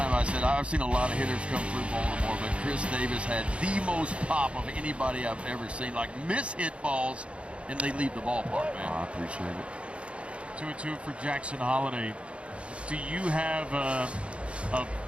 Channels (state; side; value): late; left; 0.060 ms